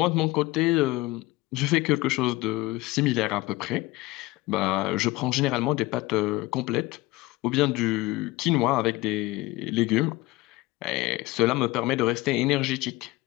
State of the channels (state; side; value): quieter; right; 20.1 dB